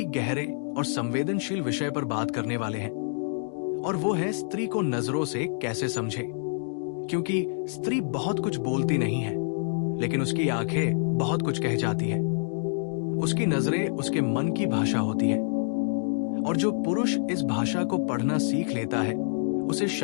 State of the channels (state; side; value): silent; right; digital silence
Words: गहरे और संवेदनशील विषय पर बात करने वाले हैं और वो है स्त्री को नजरों से कैसे समझें। क्योंकि स्त्री बहुत कुछ बोलती नहीं है, लेकिन उसकी आंखें बहुत कुछ कह जाती है। उसकी नजरें उसके मन की भाषा होती है और जो पुरुष इस भाषा को पढ़ना सीख लेता है उसे